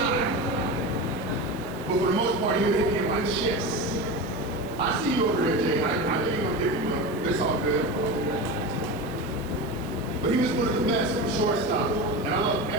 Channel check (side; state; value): right; noise; hiss, 22 dB below the sound